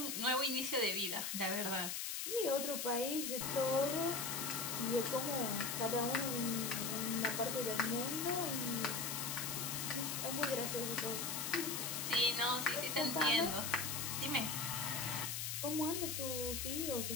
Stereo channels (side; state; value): left; noise; hiss, 2 dB below the sound